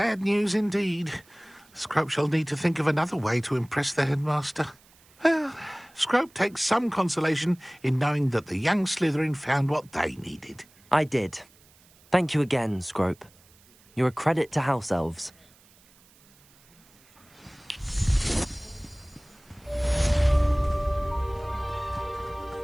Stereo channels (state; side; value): noise; right; hiss, 29 dB below the sound